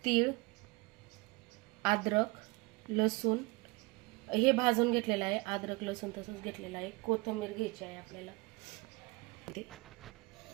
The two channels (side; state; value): left; quieter; 24.7 dB